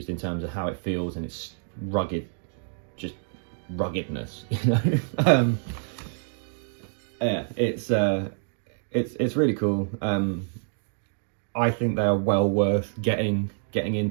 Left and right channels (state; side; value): silent; left; digital silence